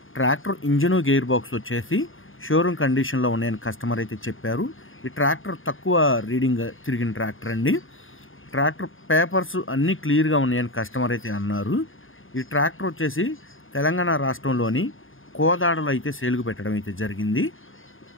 ట్రాక్టర్ ఇంజను గేర్ బాక్స్ వచ్చేసి షోరూమ్ కండిషన్లో ఉన్నాయని కస్టమర్ అయితే చెప్పారు. ఈ ట్రాక్టర్ తక్కువ రీడింగ్ తిరిగిన ట్రాక్టర్ అండి. ట్రాక్టర్ పేపర్స్ అన్నీ క్లియర్గా ఉన్నాయని కస్టమర్ అయితే అన్నారు. ఈ ట్రాక్టర్ వచ్చేసి తెలంగాణ రాష్ట్రంలోని కోదాడలో అయితే సేల్కు పెట్టడం అయితే జరిగింది.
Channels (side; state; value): right; late; 0.59 ms